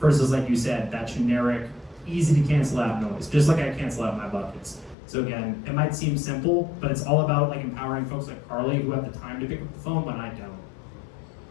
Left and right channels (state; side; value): drops out; right; at 5.0 s